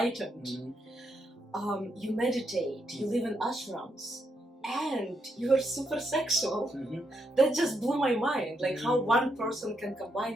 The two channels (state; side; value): normal; both; correlation 0.79